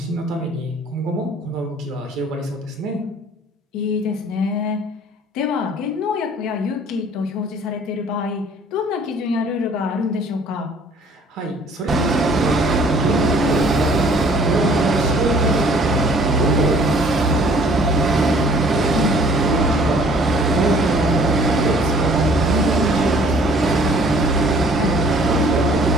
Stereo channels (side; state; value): both; normal; correlation 0.56